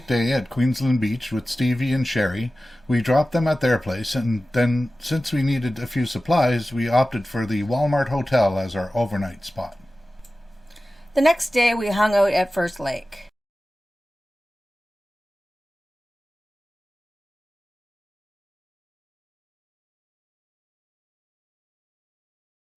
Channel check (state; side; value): normal; both; correlation 0.96